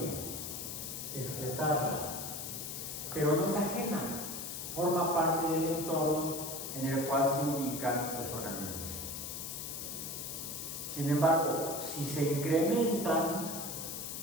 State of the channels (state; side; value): noise; left; hiss, 6 dB below the sound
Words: excretarla, pero no es ajena, forma parte del entorno en el cual se ubican los organismos. Sin embargo, si se incrementan